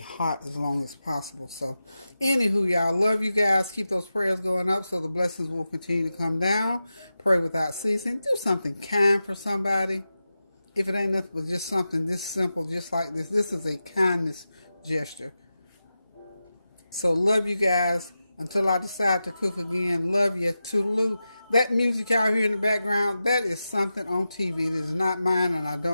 as long as possible. So anywho, y'all, love you guys. Keep those prayers going up so the blessings will continue to come down. Pray without ceasing. Do something kind for somebody. If it ain't nothing but just something this simple, just like this. This is a kindness gesture. So love you guys. Until I decide to cook again, love you. Toodaloo. That music out here in the background, that is something on TV. It is not mine, and I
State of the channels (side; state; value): both; inverted; correlation -0.92